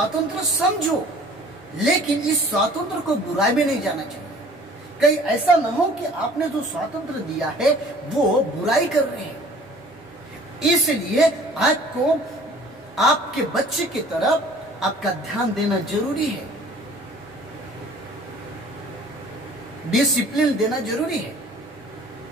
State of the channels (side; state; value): both; normal; correlation 0.50